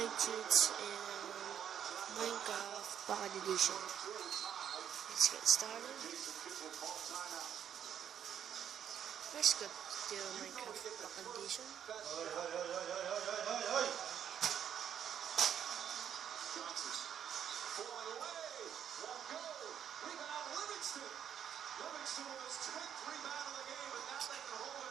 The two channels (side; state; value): left; quieter; 9.1 dB